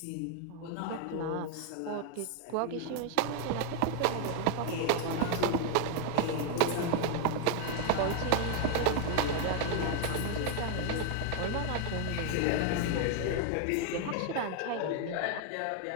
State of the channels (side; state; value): both; different; correlation 0.00